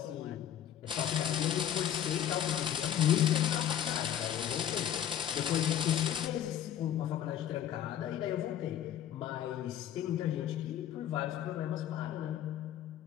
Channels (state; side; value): quieter; right; 10.4 dB